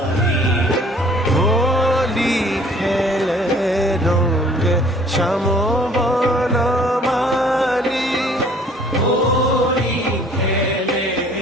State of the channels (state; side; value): normal; both; correlation 0.55